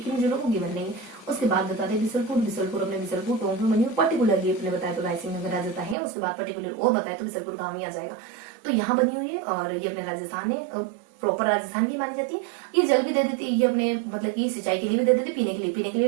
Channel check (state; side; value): drops out; left; at 6.0 s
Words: किन जिलों को गिवन नहीं है। उसके बाद बता दें बिसलपुर अपने बिसलपुर टोंक में बनी हुई, पर्टिकुलरली अपने बताया तो रायसिंह नगर आ जाता है। उसके बाद पर्टिकुलर और बताया तो बिसलपुर गाँव ही आ जाएगा। तो यहाँ बनी हुई है और ये अपने राजस्थान है, प्रॉपर राजस्थान की मानी जाती है। ये जल भी दे देती है, ये अपने मतलब कि सिंचाई के लिए भी दे देती है, पीने के